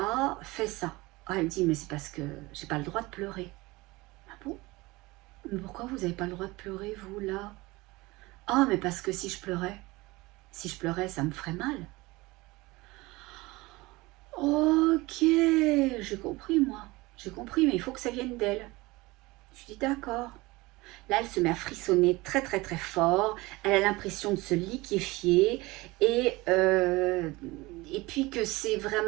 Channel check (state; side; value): quieter; left; 21.7 dB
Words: fait ça? Ah, elle dit, mais c'est parce que j'ai pas le droit de pleurer. Ah bon? Mais pourquoi vous n'avez pas le droit de pleurer, vous, là? Ah, mais parce que si je pleurais, ça me ferait mal. Ok, j'ai compris, moi. J'ai compris, mais il faut que ça vienne d'elle. Je dis, d'accord. Là, elle se met à frissonner très fort. Elle a l'impression de se liquéfier et puis que c'est